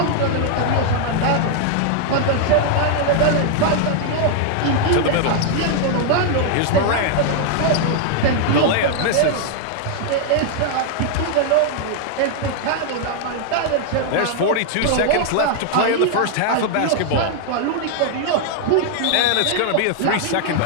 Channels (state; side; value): different; both; correlation 0.00